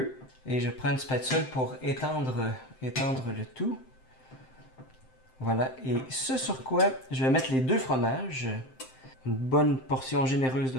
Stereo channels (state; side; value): late; right; 7.7 ms